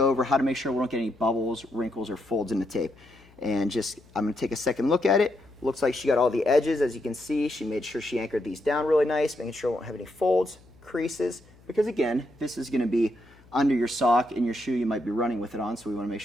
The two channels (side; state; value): left; noise; hum, 27 dB below the sound